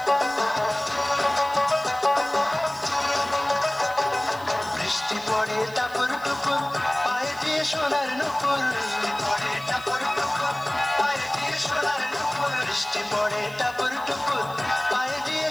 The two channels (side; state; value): right; noise; hiss, 22 dB below the sound